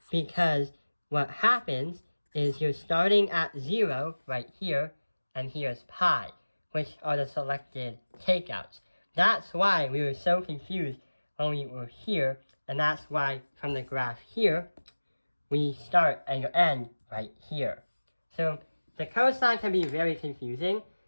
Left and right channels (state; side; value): inverted; both; correlation -1.00